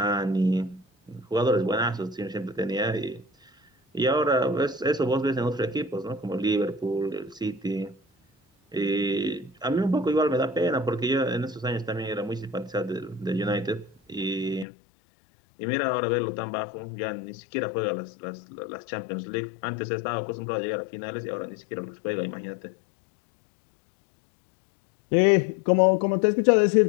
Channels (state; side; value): drops out; right; at 14.7 s